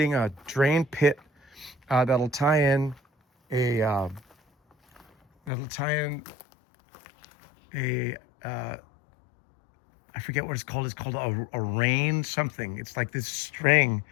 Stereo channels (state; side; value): drops out; right; at 5.5 s